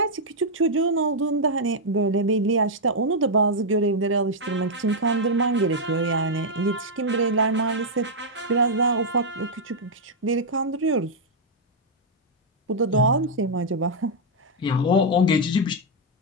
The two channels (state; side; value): normal; both; correlation -0.04